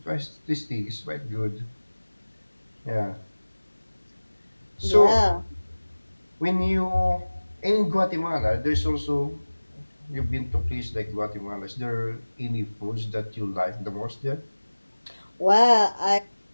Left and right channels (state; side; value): inverted; both; correlation -1.00